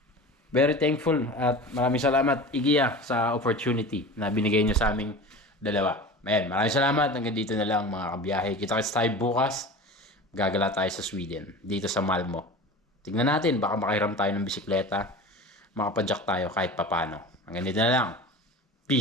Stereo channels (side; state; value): both; normal; correlation 0.34